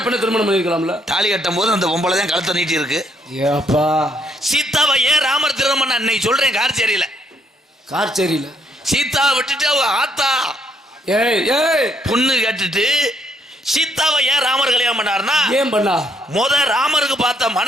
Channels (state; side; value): normal; both; correlation 0.71